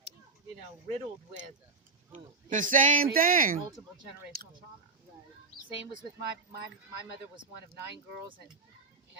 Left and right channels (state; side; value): quieter; left; 3.9 dB